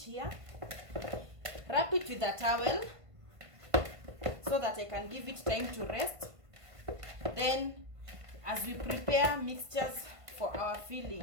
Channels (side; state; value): left; late; 1.5 ms